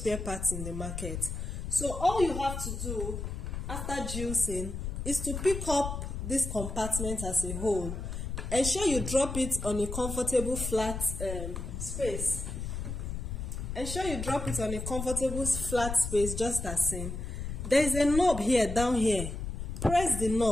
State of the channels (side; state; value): left; noise; rumble, 5 dB below the sound